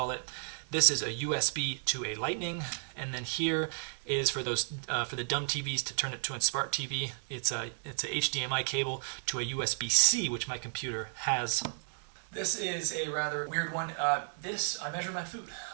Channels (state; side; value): silent; left; digital silence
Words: it. This is a USB to a Lightning, and then here is for those for the dumb TVs to turn it to a smart TV. It's a HDMI cable to a USB-C, which my computer has. This is a rather weird one. I measure my food.